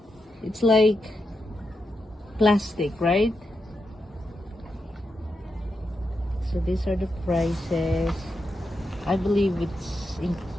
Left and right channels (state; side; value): normal; both; correlation 0.86